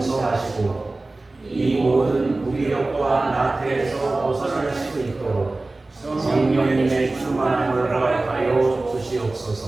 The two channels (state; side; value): quieter; left; 3.1 dB